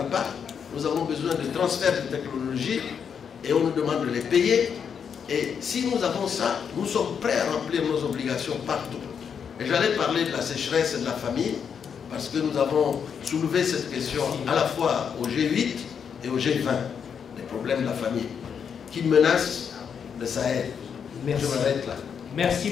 a pas. Nous avons besoin de transfert de technologie et on nous demande de les payer. Et si nous avons ça, nous sommes prêts à remplir nos obligations partout. Et j'allais parler de la sécheresse et de la famine, parce que nous avons soulevé cette question à la fois au G8 et au G20, les problèmes de la famine, qui menacent le Sahel. Merci. Je m'arrête là. Merci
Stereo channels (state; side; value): quieter; right; 7.1 dB